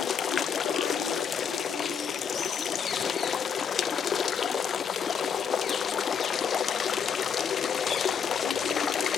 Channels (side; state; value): right; quieter; 7.0 dB